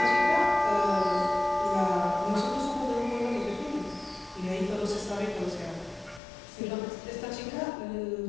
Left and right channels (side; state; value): right; drops out; at 6.2 s